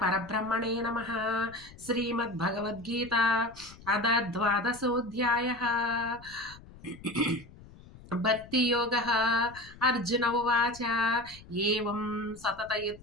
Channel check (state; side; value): noise; left; rumble, 20 dB below the sound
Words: పరబ్రహ్మణే నమః. శ్రీమద్భగవద్గీత అథ ద్వాదశోऽధ్యాయः. భక్తియోగः. అర్జున ఉవాచ ఏవం